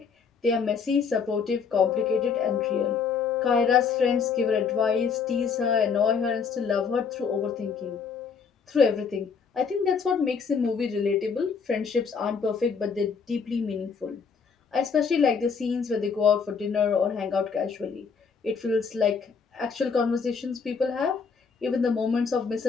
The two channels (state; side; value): quieter; right; 5.8 dB